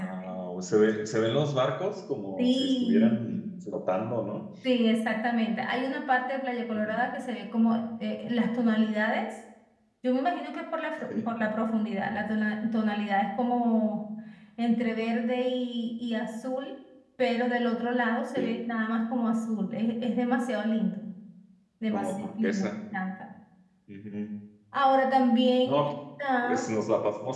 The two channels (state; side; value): identical; both; correlation 1.00